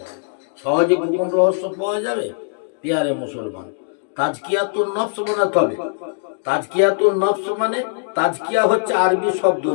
সহজে গোপন রহস্য পাওয়া যাবে? পিয়ারে মুসলমান, তাজকিয়াতুন নফস বানাতে হবে। তাজকিয়াতুন নফস মানে, তাজকিয়া হচ্ছে আরবি শব্দ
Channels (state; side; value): silent; right; digital silence